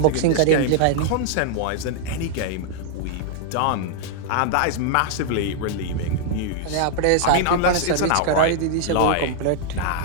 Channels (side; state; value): both; different; correlation 0.00